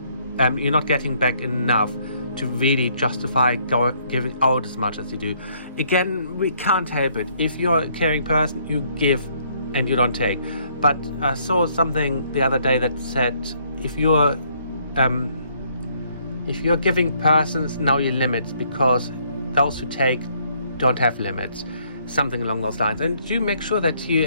back enough to really justify giving out as much as you do. Again, we can't help it. If you're a caring person, you give and you don't take. But I saw something the other day that said, if you're If you're giving persons, know your limits, because those who take don't have limits. Something along those lines. And do make sure that you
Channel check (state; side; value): inverted; both; correlation -0.67